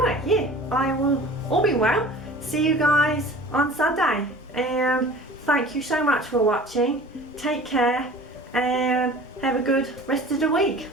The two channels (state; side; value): normal; both; correlation 0.43